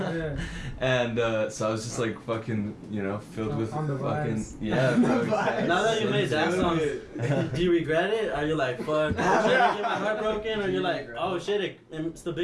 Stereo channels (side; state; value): both; identical; correlation 1.00